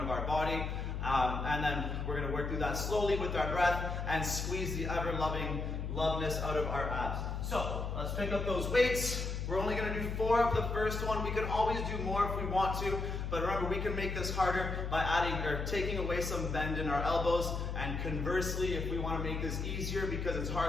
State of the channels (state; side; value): noise; left; hum, 3 dB below the sound